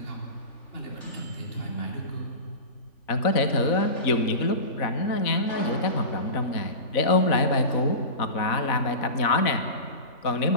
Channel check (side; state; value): right; late; 3.5 ms